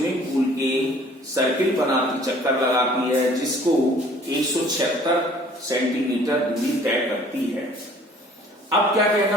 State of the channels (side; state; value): both; normal; correlation 0.54